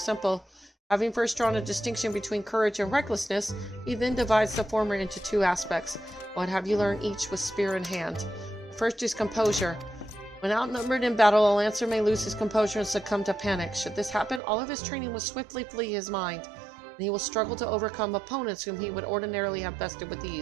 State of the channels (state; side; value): drops out; left; at 14.4 s